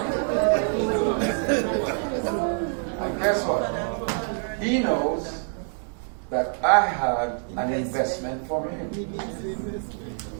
And guess what? He knows that I had an investment for him.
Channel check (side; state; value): left; silent; 56 dB below the other